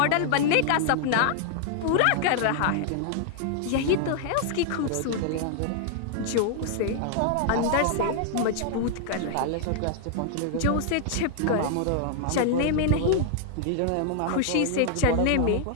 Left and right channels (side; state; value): both; different; correlation -0.01